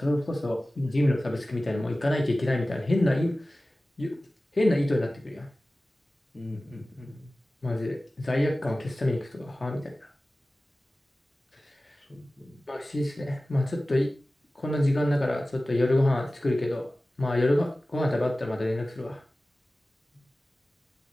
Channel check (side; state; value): both; normal; correlation 0.97